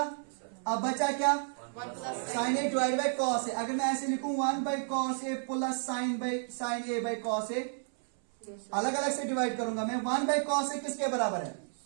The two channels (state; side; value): silent; left; 57 dB below the other